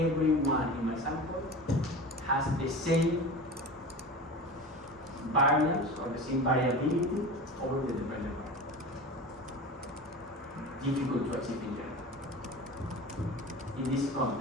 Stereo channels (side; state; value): both; normal; correlation 0.32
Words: in my sample has the same variance or the same variability over the dependent variable. Difficult to achieve in general. In this